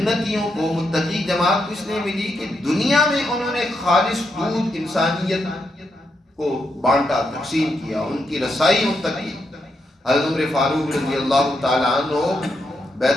کو، متقی جماعت کو اس لیے ملی کہ دنیا میں انہوں نے خالص دودھ انسانیت کو بانٹا، تقسیم کیا، ان کی رسائی ان تک کی۔ حضرت عمر فاروق رضی اللہ تعالیٰ عنہ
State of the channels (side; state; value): both; normal; correlation 0.82